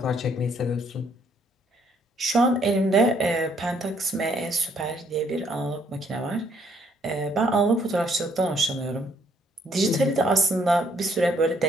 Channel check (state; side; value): normal; both; correlation 0.67